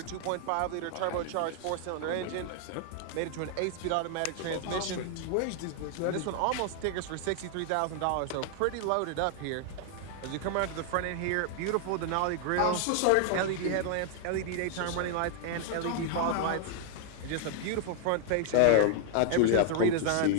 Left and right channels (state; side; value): different; both; correlation 0.00